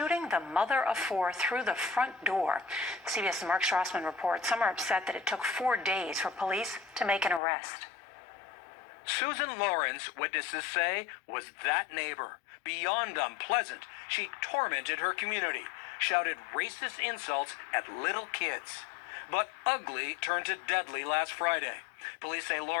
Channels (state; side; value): drops out; right; at 7.4 s